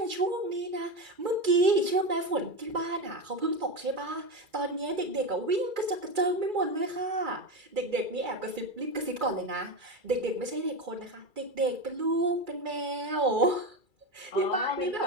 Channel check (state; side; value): late; left; 2.3 ms